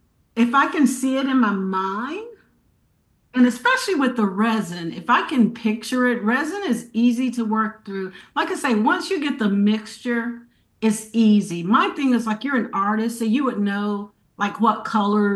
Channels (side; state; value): both; identical; correlation 1.00